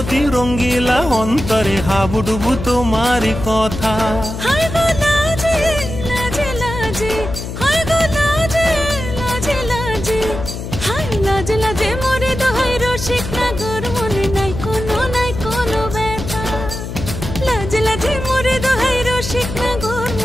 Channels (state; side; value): noise; left; hum, 7 dB below the sound